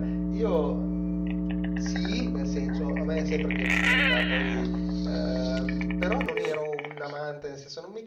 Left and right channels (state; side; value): identical; both; correlation 1.00